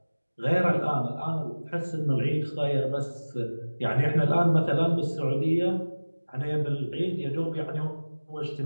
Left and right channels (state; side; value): inverted; both; correlation -1.00